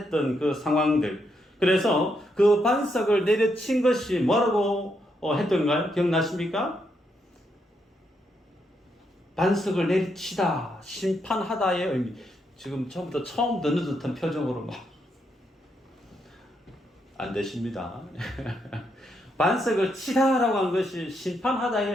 그 상황들. 그래서 그 반석을 내려친 것이 뭐라고 했던가요? 기억나십니까? 반석을 내리치다, 심판하다의 의미. 지금 처음부터 처음 듣는 듯한 표정으로 막 안 되십니다. 반석을 치다라고 한 것이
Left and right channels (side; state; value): both; normal; correlation 0.79